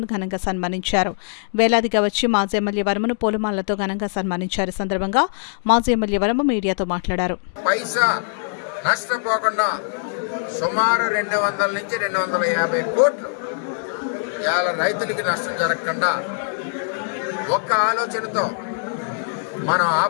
ఘనంగా సన్మానించారు. వేలాదిగా వచ్చి మాజీ ఎమ్మెల్యే వర్మను పూలమాలతో ఘనంగా సన్మానించారు. ఈ సందర్భంగా మాజీ ఎమ్మెల్యే వర్మ మీడియాతో మాట్లాడారు. నష్టపోకుండా సుమారు 200 నుంచి 250 కోట్లు ఇవాళ రైతులకి నష్టం జరగకుండా ఒక్క ఆలోచనతో మనం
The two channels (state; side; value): silent; right; digital silence